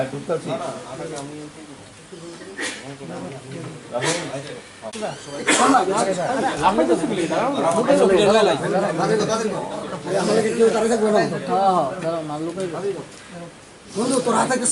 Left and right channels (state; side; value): identical; both; correlation 1.00